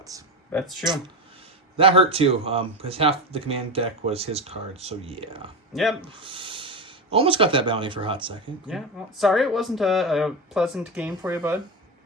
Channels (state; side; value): normal; both; correlation 0.18